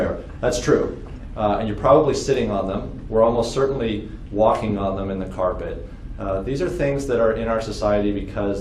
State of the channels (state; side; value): identical; both; correlation 1.00